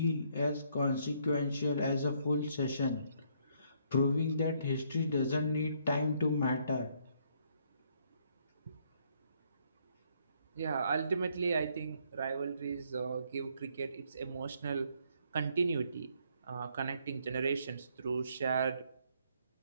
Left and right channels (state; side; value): inverted; both; correlation -0.69